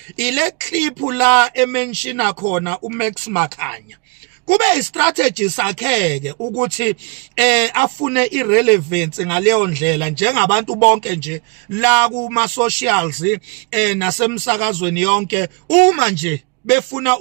ile clip la emenshina khona uMax Makhanya. Kube istrategy sakheke ukuthi afune irrelevance ngaleyo ndlela njengabantu bonke nje la kuma socials nasemsakazweni yonke. Uma nje befuna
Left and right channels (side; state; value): left; quieter; 31.9 dB